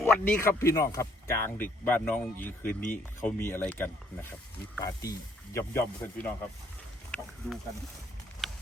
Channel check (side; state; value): both; normal; correlation 0.66